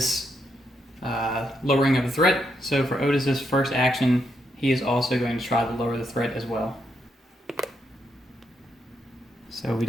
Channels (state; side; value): normal; both; correlation 0.79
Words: lowering of the threat. So for Otis's first action, he is also going to try to lower the threat as well. So we